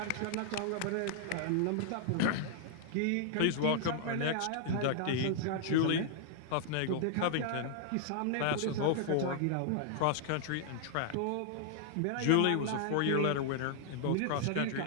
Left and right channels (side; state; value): both; different; correlation -0.01